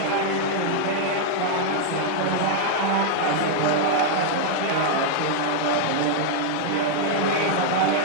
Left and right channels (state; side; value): different; both; correlation -0.01